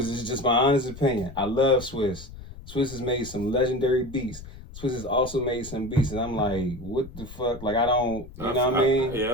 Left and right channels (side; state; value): left; noise; rumble, 15 dB below the sound